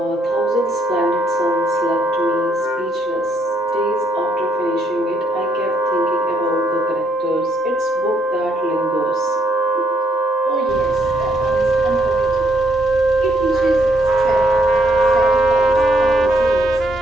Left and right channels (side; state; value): both; normal; correlation 0.72